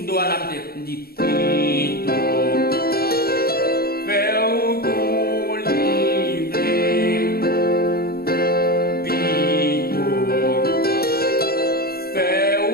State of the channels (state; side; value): late; right; 0.44 ms